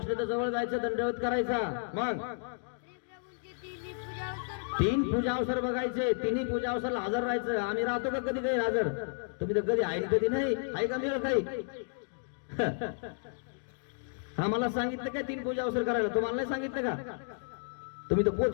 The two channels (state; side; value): silent; right; digital silence